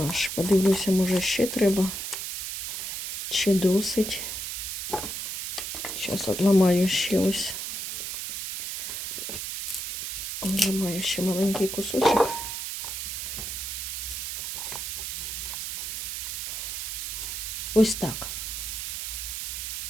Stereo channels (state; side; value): noise; right; hiss, 4 dB below the sound